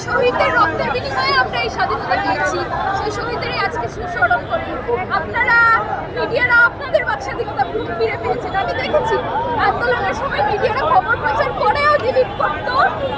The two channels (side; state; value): both; identical; correlation 1.00